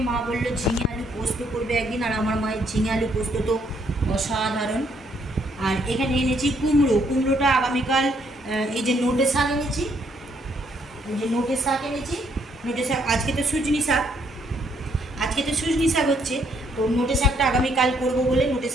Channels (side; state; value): both; normal; correlation 0.70